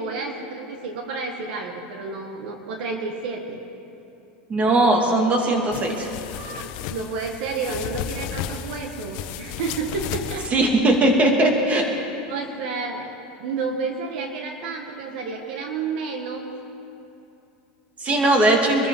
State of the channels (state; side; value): normal; both; correlation 0.39